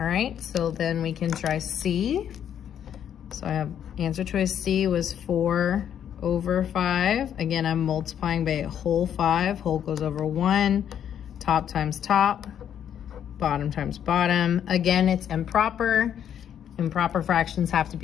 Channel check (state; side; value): quieter; right; 9.4 dB